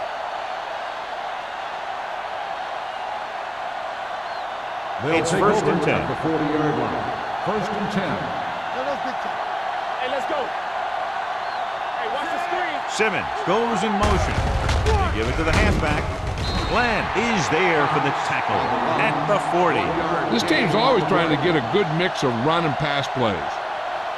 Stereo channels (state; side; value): identical; both; correlation 1.00